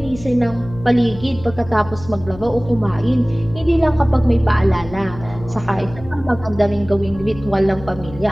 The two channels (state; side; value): noise; left; hum, 15 dB below the sound